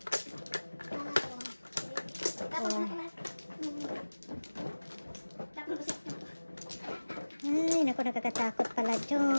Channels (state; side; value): inverted; both; correlation -1.00